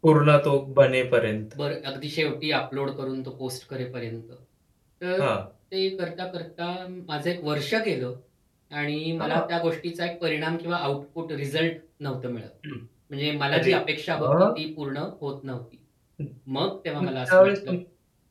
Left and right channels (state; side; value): identical; both; correlation 1.00